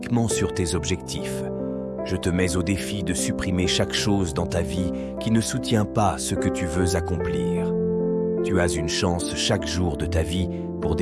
sur tes objectifs. Je te mets au défi de supprimer chaque chose dans ta vie qui ne soutient pas ce que tu veux accomplir. Tu as une chance chaque jour de ta vie pour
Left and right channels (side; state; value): both; identical; correlation 1.00